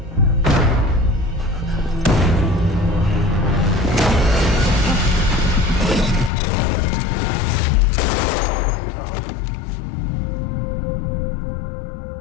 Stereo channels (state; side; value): drops out; right; at 6.3 s